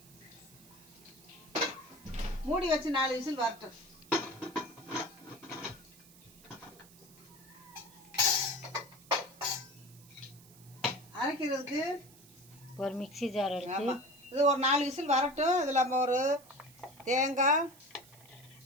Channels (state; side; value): noise; right; hiss, 23 dB below the sound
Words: மூடி வச்சு 4 விசில் வரட்டும். அரைக்கிறதுக்கு ஒரு மிக்ஸி ஜார் எடுத்து இது ஒரு 4 விசில் வரட்டும். இதில் நம்ம ஒரு தேங்காய்,